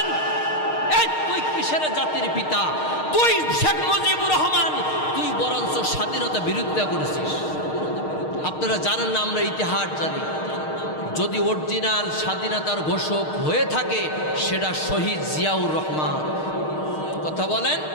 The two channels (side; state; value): right; late; 6.5 ms